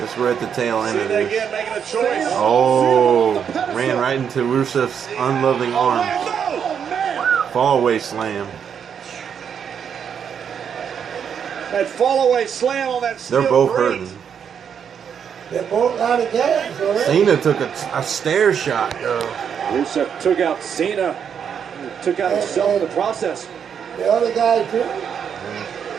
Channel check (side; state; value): left; quieter; 7.7 dB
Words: we're at the tail end of this. Again, making a choice. Oh, ran right into Rusev's unloving arms. Fall away slam. That fall away slam on that steel They're both grate. hurting. They're both out of gas already. Cena took a stair shot, though. Rusev took out Cena. Took out himself in the process. The other guy too.